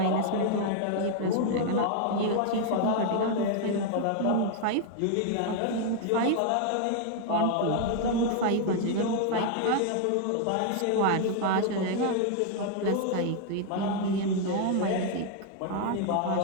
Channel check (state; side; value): different; both; correlation 0.00